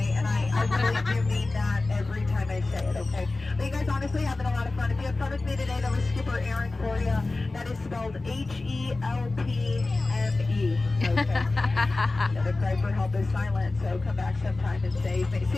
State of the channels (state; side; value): quieter; right; 3.3 dB